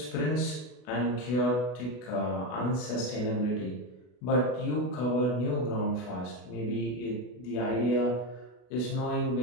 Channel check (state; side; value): late; right; 32 ms